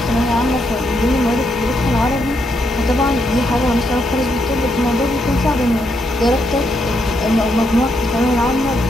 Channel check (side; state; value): both; normal; correlation 0.78